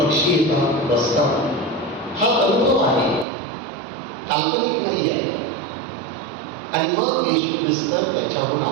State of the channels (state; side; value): drops out; left; at 3.2 s